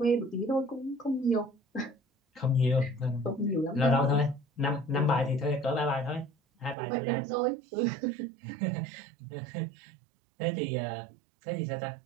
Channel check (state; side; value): drops out; left; at 6.8 s